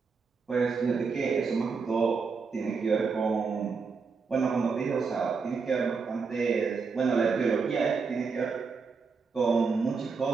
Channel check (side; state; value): left; quieter; 5.1 dB